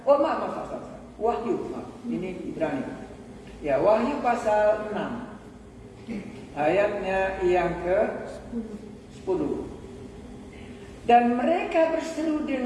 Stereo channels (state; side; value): identical; both; correlation 1.00